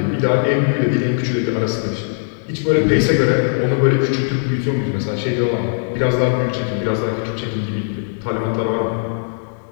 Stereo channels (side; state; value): right; silent; 67 dB below the other